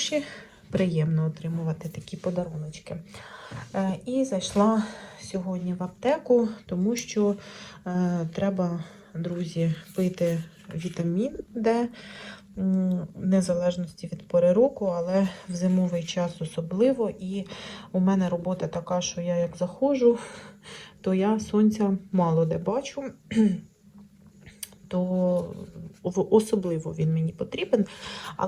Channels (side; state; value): both; identical; correlation 1.00